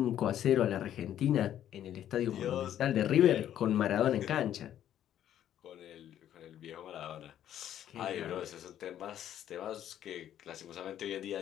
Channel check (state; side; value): quieter; right; 11.0 dB